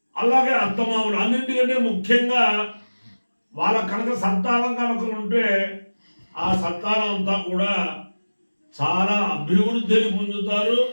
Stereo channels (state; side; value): inverted; both; correlation -1.00